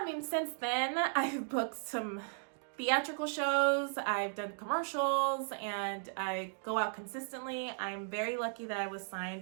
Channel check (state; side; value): silent; left; digital silence